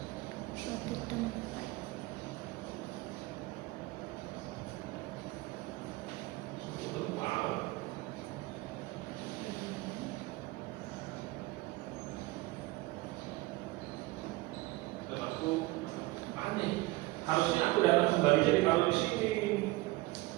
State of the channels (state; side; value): quieter; left; 20.5 dB